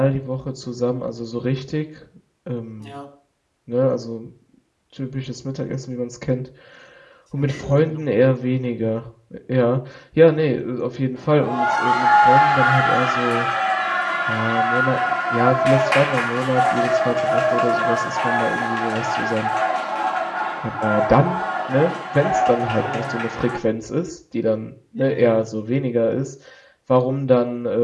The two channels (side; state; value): both; identical; correlation 1.00